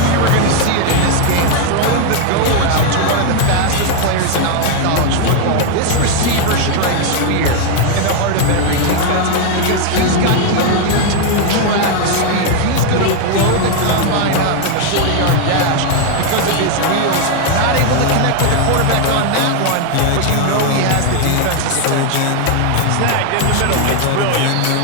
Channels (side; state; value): both; different; correlation 0.00